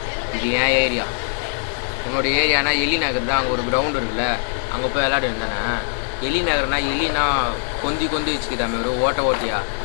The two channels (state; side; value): silent; right; 65 dB below the other